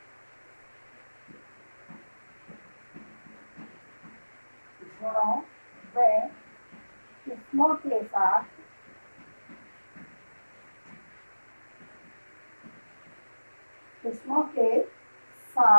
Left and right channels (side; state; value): both; inverted; correlation -1.00